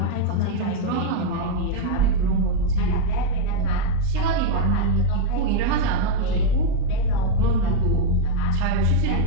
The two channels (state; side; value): different; both; correlation 0.01